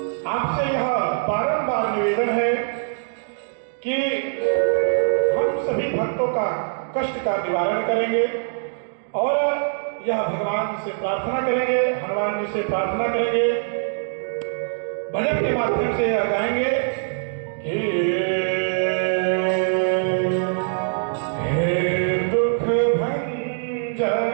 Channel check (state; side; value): silent; left; digital silence